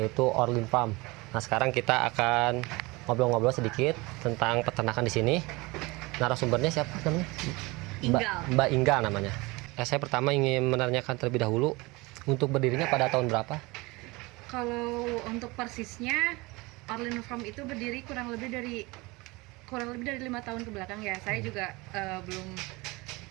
Orlin Farm. Nah, sekarang kita akan ngobrol-ngobrol sedikit tentang peternakan di sini. Narasumbernya siapa namanya? Mbak Ingga namanya. Saya pertama ingin menanyakan terlebih dahulu, untuk berdirinya pada tahun berapa? Kalau untuk persisnya, Orlin Farm itu berdiri kurang lebih dari 5 tahun ke belakang ya. Saya juga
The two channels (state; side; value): quieter; left; 23.7 dB